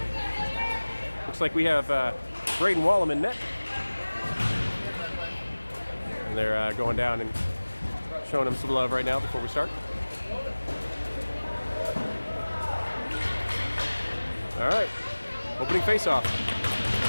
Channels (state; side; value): inverted; both; correlation -1.00